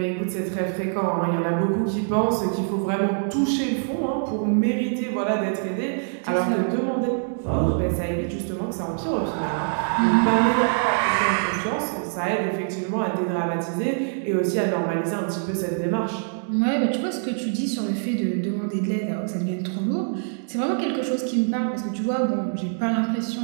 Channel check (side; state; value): left; silent; digital silence